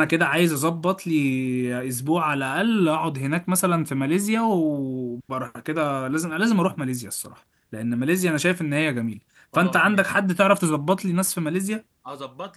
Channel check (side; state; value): both; identical; correlation 1.00